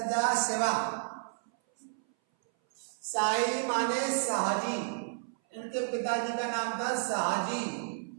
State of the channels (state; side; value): silent; left; 57 dB below the other